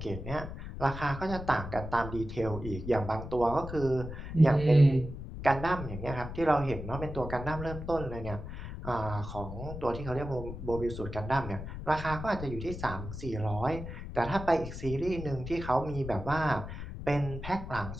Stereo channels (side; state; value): left; noise; rumble, 8 dB below the sound